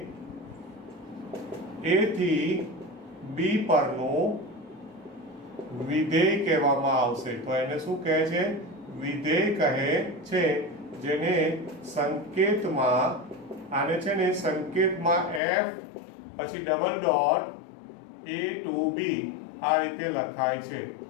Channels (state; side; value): drops out; right; at 15.4 s